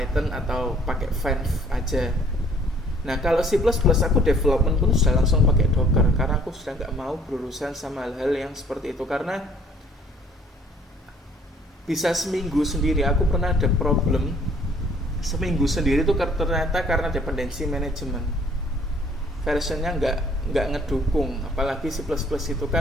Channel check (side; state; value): both; normal; correlation 0.58